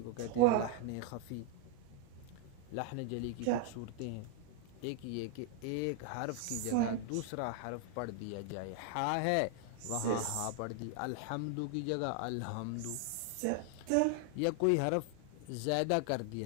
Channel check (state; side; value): different; both; correlation 0.00